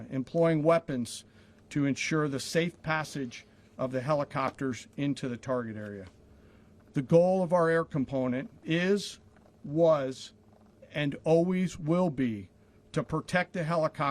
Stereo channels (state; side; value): identical; both; correlation 1.00